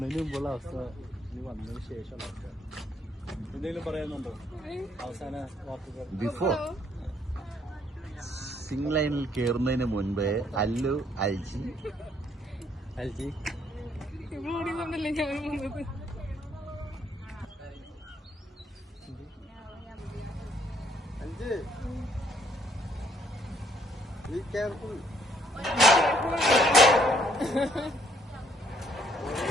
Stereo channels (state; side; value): normal; both; correlation 0.67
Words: മുമ്പുള്ള അവസ്ഥ ഇനി വന്നതിന് ശേഷമുള്ള അവസ്ഥ. എന്തെങ്കിലും പറയാനുണ്ടോ അവസാന വാക്കുകൾ? ബിഫോർ സിംഗ് ലൈനിൽ കയറുന്നതിന് മുൻപേ അല്ലു അൽജി Be careful.